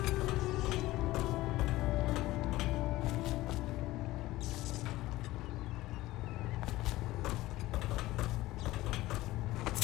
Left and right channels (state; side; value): quieter; right; 17.5 dB